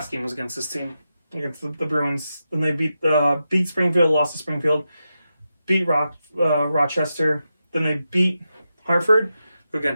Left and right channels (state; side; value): inverted; both; correlation -0.88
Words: game was against this team, against the Bruins. Then they beat Springfield, lost to Springfield, beat Rochester. Then they beat Hartford, who again